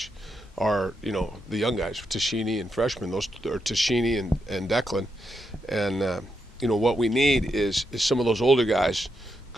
are the young guys, Tashini and freshmen. Those are Tashini and Declan, and what we need is some of those older guys.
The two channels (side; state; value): both; normal; correlation 0.83